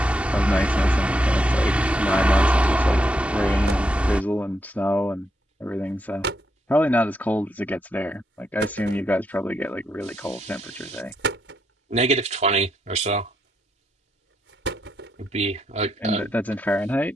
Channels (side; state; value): both; normal; correlation 0.80